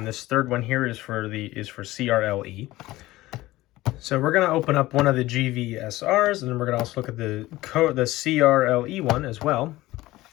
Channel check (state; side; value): quieter; right; 17.7 dB